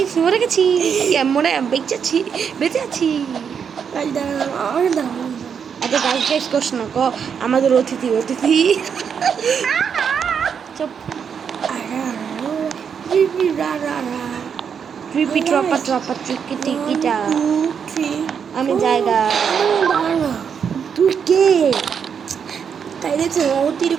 মরে গেছি, মরে বেঁচে আছি। গাইস দাঁড়াও আচ্ছা গাইস গাইস কোশ না ক আমাদের অতিথি চুপ। ট্রিপি ট্রপা টিকিটা আমি জায়গা। তুই কে? তাই দেখছো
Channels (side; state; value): left; quieter; 7.1 dB